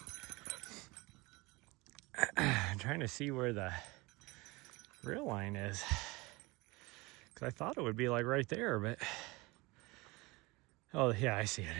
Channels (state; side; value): quieter; left; 23.8 dB